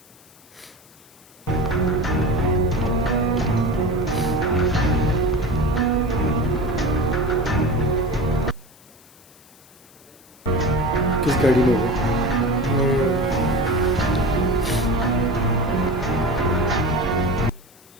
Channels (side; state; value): left; noise; hiss, 26 dB below the sound